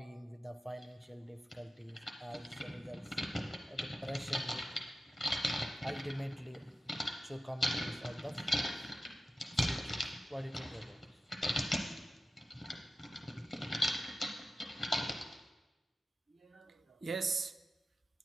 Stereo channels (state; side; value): normal; both; correlation 0.94